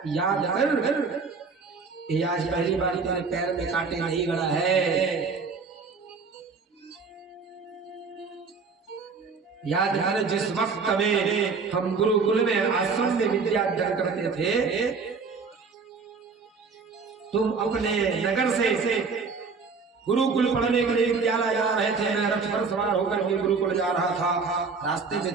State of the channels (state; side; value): quieter; left; 4.8 dB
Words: याद कर, ये आज पहली बार तेरे पैर में कांटे नहीं गड़ा है। याद कर, जिस वक्त में हम गुरुकुल में आश्रम में विद्या अध्ययन करते थे, तुम अपने नगर से गुरुकुल पढ़ने के लिए विद्यालय जा रहे थे। मैं रथ पर सवार होकर के गुरुकुल जा रहा था। रास्ते में